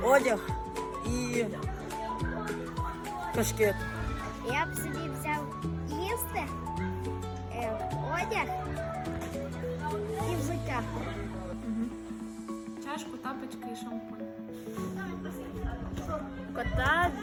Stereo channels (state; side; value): identical; both; correlation 1.00